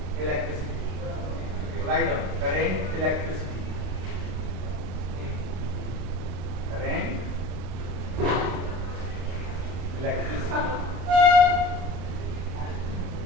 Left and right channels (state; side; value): late; left; 32 ms